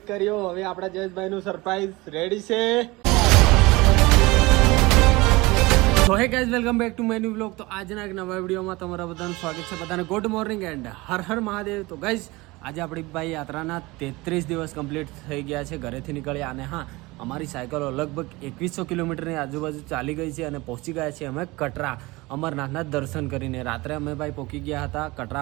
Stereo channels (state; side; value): quieter; left; 22.2 dB